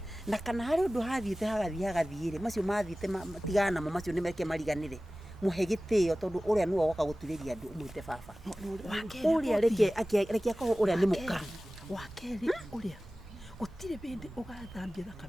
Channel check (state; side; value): normal; both; correlation 0.97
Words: Na kana harĩ ũndũ hathiĩte hagathiĩ-rĩ macio mathiĩte matigana namo macio nĩ meke mariganĩre. Muhe gĩtĩo tondũ ũrĩa nĩwe woka gũturĩria andũ ũmwĩte baba. Ũrĩa reke akorwo ũrĩa nĩ mũka. Wa kerĩ ũrĩa gũtirĩ bĩndĩ ũgathambia